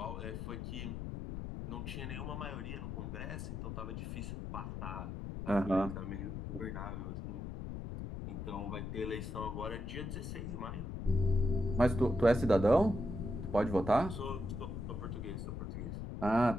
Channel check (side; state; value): left; noise; rumble, 6 dB below the sound